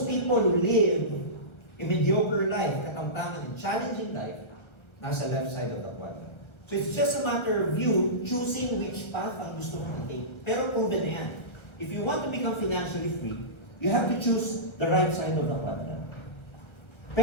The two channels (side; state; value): right; late; 1.4 ms